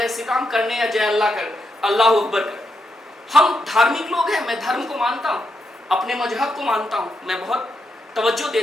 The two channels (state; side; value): normal; both; correlation 0.83